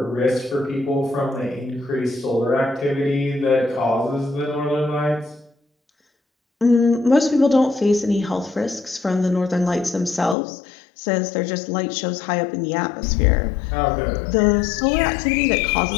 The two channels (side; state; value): right; drops out; at 10.4 s